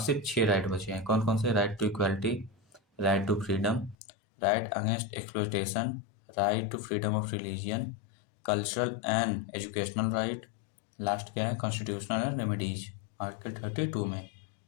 सिर्फ 6 राइट बचे हैं। कौन कौन से? Right to equality, right to freedom, right against exploitation, right to freedom of religion, cultural and educational right, last क्या है, कॉन्स्टिट्यूशनल रेमेडीज, आर्टिकल 32 में।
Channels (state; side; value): drops out; right; at 4.0 s